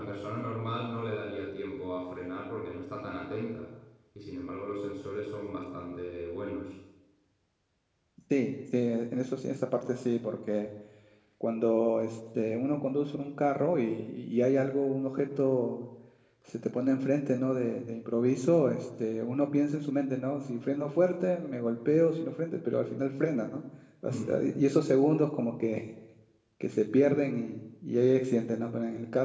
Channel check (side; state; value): both; identical; correlation 1.00